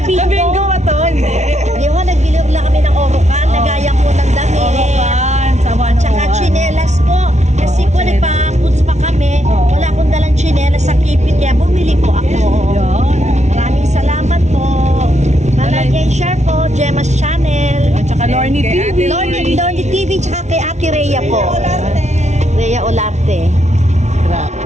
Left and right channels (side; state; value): left; late; 0.33 ms